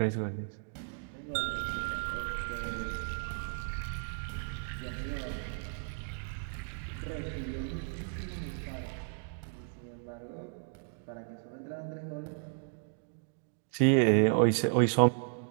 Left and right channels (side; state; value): left; silent; digital silence